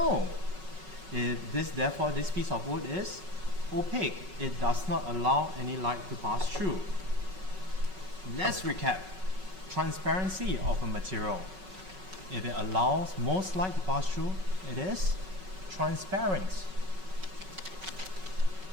Therefore, this piece of wood is opaque. It does not allow any light to pass through. let's recap. Transparency of a material. If it allows most light to pass through, it is transparent.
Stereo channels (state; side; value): late; left; 5.4 ms